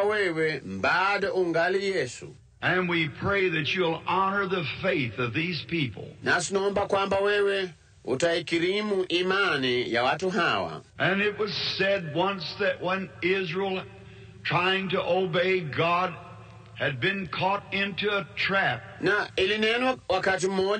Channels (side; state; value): both; identical; correlation 1.00